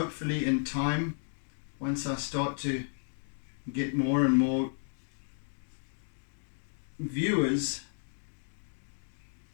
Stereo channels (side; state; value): right; silent; digital silence